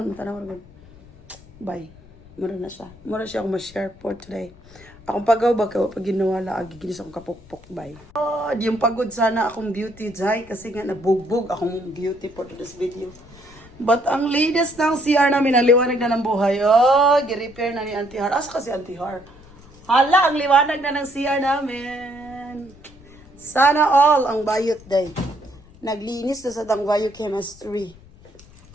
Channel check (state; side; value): noise; left; rumble, 23 dB below the sound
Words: tanaw rin. Bye. Mura na siya. Mura siya akong ma-share for today. Akong pagaw ba pag ginawala, giginis akong kapukpok. Bye. Oh, yung pagod sana akong beauty jay kasi nga nabugbog akong beauty for this video. But ang latest ng CR namin, ang liwanag na ng buhay. Oh, gi-repair na ni Auntie Har. Asa kasi Auntie Har? Hala, ang liwanag na ng CR namin. Sana all ang bayot day. Naglinis na sa Dangvayo Chemistry.